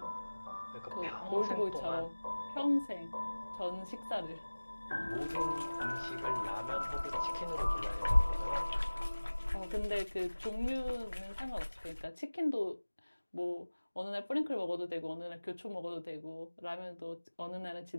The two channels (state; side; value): inverted; both; correlation -1.00